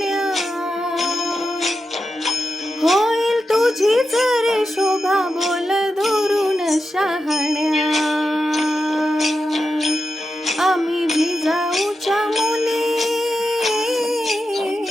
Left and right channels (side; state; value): both; normal; correlation 0.89